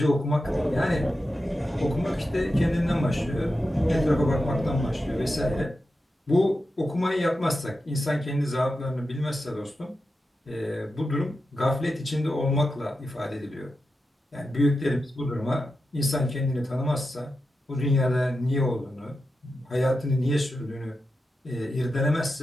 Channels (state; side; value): normal; both; correlation 0.90